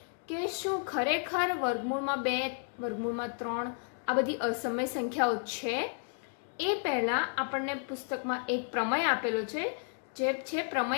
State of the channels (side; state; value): right; silent; 56 dB below the other